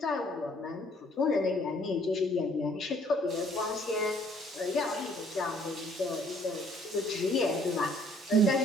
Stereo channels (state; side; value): normal; both; correlation 0.61